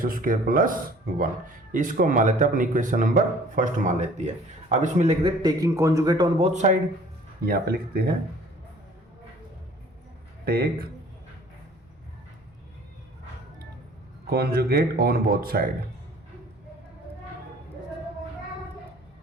square plus 1। इसको मान लेते हैं अपनी equation number first मान लेती है। अब इसमें लिख दे taking conjugate on both side, यहां पे लिखते हैं take conjugate on both side.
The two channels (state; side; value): normal; both; correlation 0.52